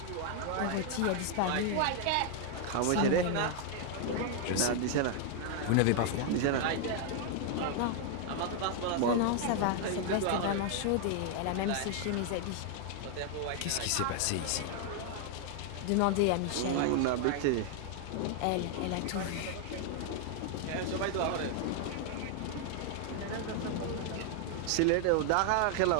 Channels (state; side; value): different; both; correlation 0.00